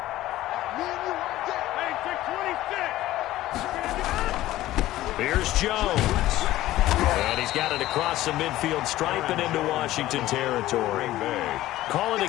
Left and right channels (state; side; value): quieter; right; 15.4 dB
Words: Here's Jones. And he's got it across the midfield stripe and into Washington territory. Calling